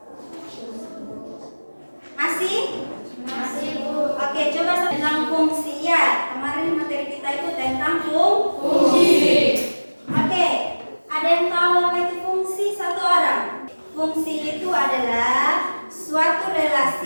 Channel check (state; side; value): inverted; both; correlation -1.00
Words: Masih? Masih, Bu. Oke, coba tentang fungsi ya. Kemarin materi kita itu tentang fungsi. Oke, ada yang tahu apa itu fungsi? Satu orang. Fungsi itu adalah suatu